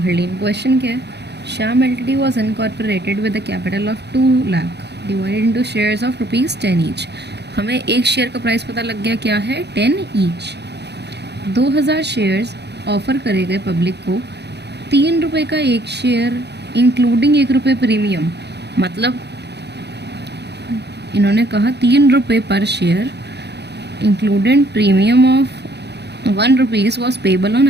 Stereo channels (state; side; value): late; left; 0.49 ms